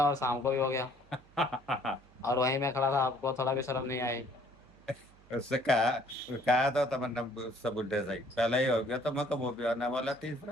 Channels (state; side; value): noise; right; hum, 27 dB below the sound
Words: और शाम को भी हो गया। हो। और वहीं मैं खड़ा था, आपको थोड़ा भी शर्म नहीं आई? उससे कहा तो तमन्ना, सब बुढ़े सही पहले ही हो गया तो मैं कब वो भी आने वाला